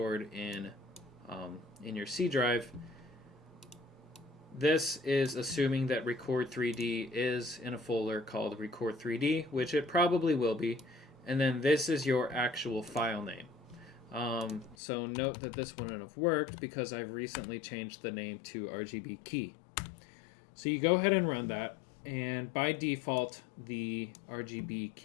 in your C drive. This is assuming that Record3D is in a folder called Record3D, which it probably will be, and then this is your actual file name. So note that this wouldn't have worked because I've recently changed the name to rgbkey. So you go ahead and run that, and by default the RGB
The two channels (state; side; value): drops out; right; at 14.8 s